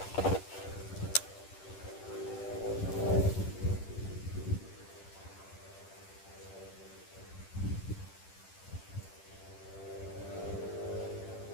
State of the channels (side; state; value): right; late; 10 ms